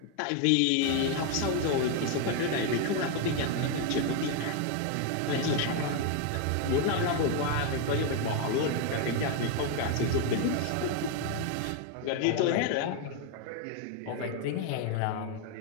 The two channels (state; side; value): different; both; correlation 0.01